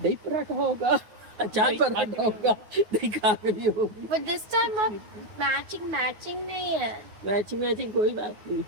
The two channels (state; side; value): late; left; 9.3 ms